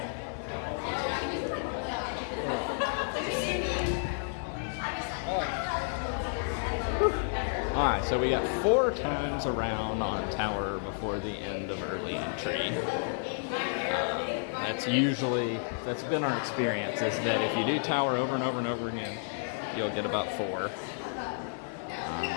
Alright, so we got 4 times around on tower before the end of early entry. That's been our experience, is that if you do tower over and over and over again, you'll get about 4. I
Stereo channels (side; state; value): right; silent; 57 dB below the other